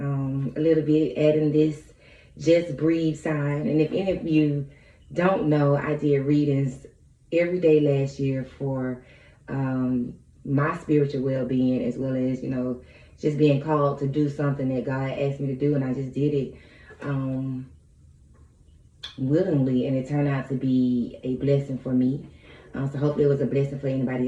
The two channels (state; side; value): identical; both; correlation 1.00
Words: little bit, adding this Just Breathe sign. And if any of you don't know, I did readings every day last year for my spiritual well-being, as well as, just being called to do something that God asked me to do. And I just did it willingly, and it turned out to be a blessing for me. So hopefully it was a blessing for anybody